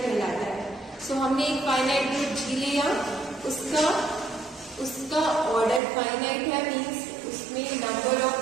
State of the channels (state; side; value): drops out; left; at 5.8 s